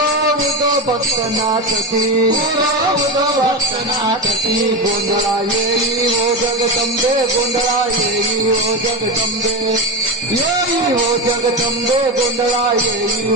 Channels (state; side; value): normal; both; correlation 0.18